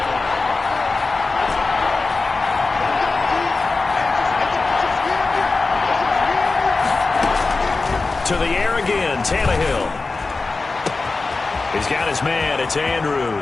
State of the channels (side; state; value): right; quieter; 3.8 dB